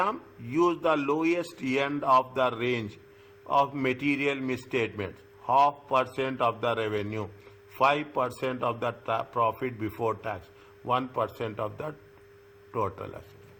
use the lowest end of the range of material misstatements, 0.5% of the revenue, 5% of the profit before tax, 1% of the total assets.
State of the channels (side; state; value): both; identical; correlation 1.00